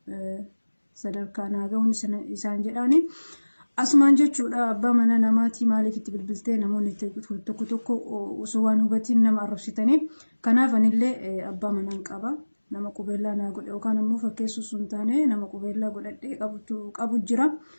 sadarkaa naa ga'uun isaan jedhaani. Asumaan jechuudha abbaa mana namaatii maaliif itti bilbiltee namoonni tokko tokko osoo waan hubatiin nama arrabsitanii. Kanaaf anillee abbaa manaan qaba. Nama qubeellaa naa godhe yookaan immoo fakkeessuu sun taane nama qubeellaa godhadhee qabu jira.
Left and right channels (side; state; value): both; inverted; correlation -1.00